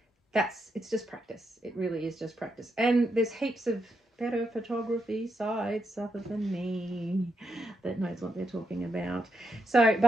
it's just practice. It really is just practice. And there's heaps of better photography sites other than me that knows what they're talking about. So,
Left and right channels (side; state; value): both; normal; correlation 0.82